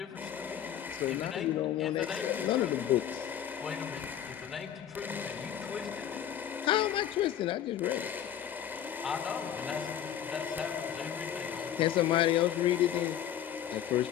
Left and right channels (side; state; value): right; quieter; 10.2 dB